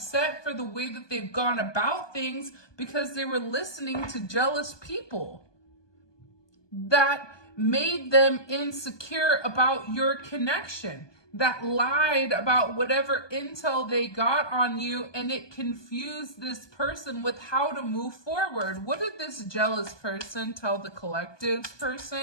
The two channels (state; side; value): late; right; 1.2 ms